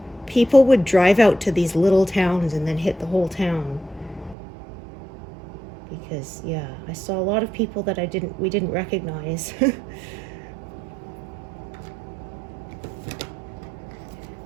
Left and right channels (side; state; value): left; drops out; at 4.4 s